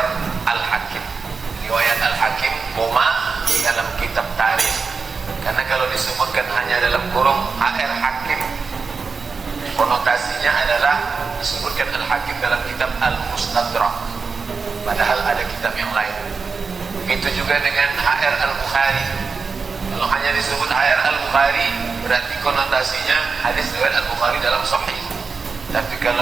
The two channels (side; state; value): left; quieter; 4.8 dB